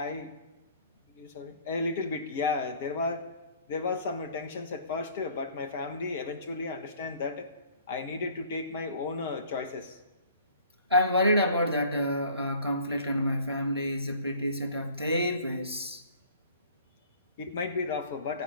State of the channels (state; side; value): inverted; both; correlation -0.53